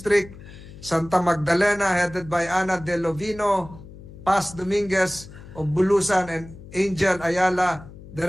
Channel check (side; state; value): left; noise; hum, 17 dB below the sound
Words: Santa Magdalena, headed by Ana De Lovino, Paz Dominguez of Bulusan, and Angel Ayala,